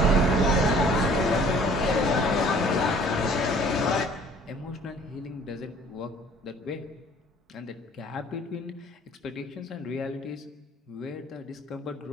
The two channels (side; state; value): both; normal; correlation 0.53